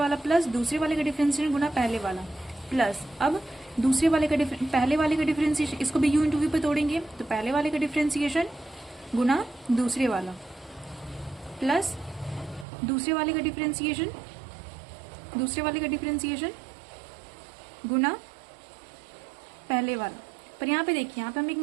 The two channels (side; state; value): left; drops out; at 12.7 s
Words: प्लस दूसरे वाले का डिफरेंशिएशन गुना पहले वाला प्लस, अब पहले वाले का डिफरेंशिएशन, इसको भी u इंटू वी पे तोड़ेंगे। तो पहले वाले का डिफरेंशिएशन गुना दूसरे वाला प्लस दूसरे वाले का डिफरेंशिएशन गुना पहले वाला। पर यहाँ पे देखिए, यहाँ पे हम एक